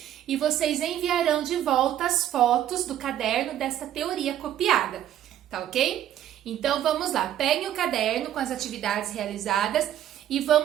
e vocês enviarão de volta as fotos do caderno dessa teoria copiada, tá ok? Então vamos lá, peguem o caderno com as atividades realizadas e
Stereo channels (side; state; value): left; quieter; 11.5 dB